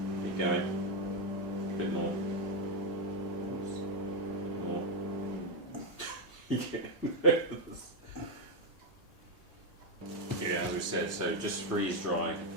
Keep going. A bit more. More. Yeah, as we said, so just freeze dry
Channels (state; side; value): normal; both; correlation 0.05